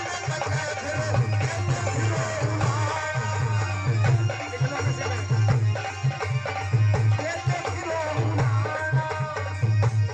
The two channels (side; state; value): both; identical; correlation 1.00